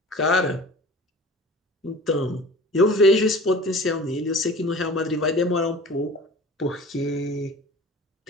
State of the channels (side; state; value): both; normal; correlation 0.42